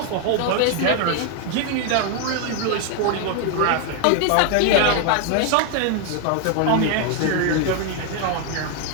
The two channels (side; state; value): both; different; correlation 0.00